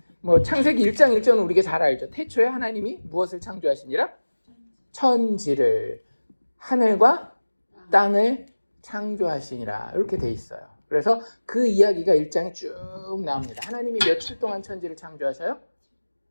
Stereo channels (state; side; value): inverted; both; correlation -1.00